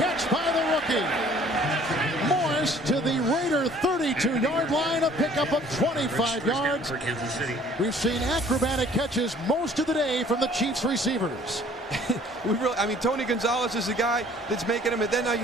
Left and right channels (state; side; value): normal; both; correlation 0.55